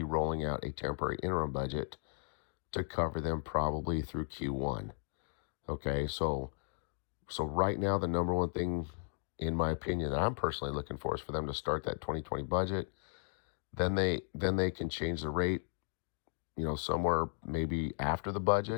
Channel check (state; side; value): silent; right; digital silence